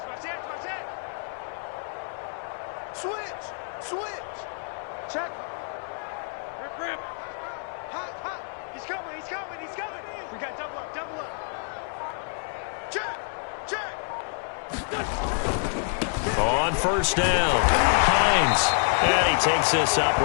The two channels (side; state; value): right; silent; 60 dB below the other